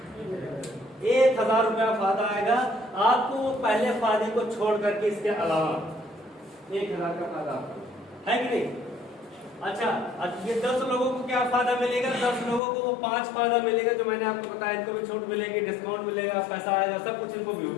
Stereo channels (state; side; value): drops out; right; at 12.6 s